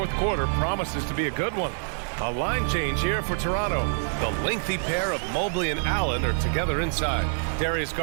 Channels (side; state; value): left; silent; 61 dB below the other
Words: quarter promises to be a good one. A line change here for Toronto. The lengthy pair of Mobley and Allen are together inside. Darius